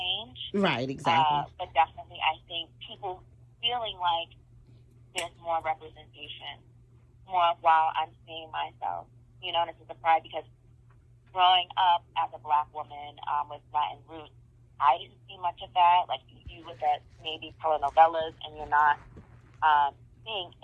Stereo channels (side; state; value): both; identical; correlation 1.00